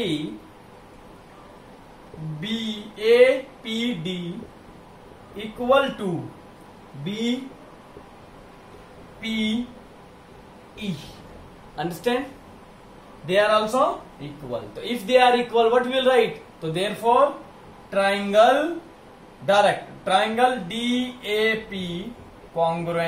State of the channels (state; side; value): identical; both; correlation 1.00